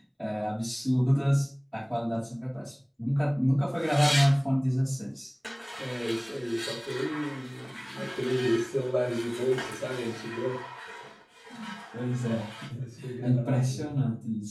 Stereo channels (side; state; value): both; identical; correlation 1.00